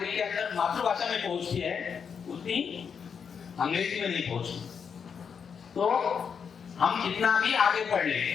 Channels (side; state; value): right; quieter; 6.7 dB